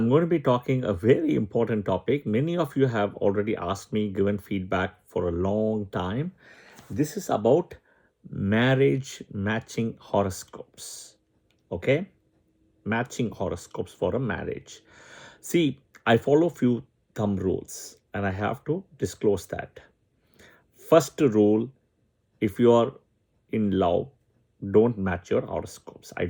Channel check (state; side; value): identical; both; correlation 1.00